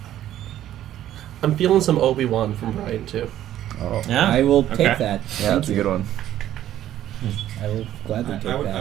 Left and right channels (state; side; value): quieter; left; 12.3 dB